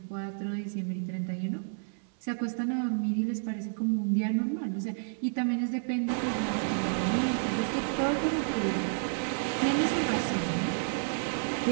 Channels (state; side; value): silent; left; digital silence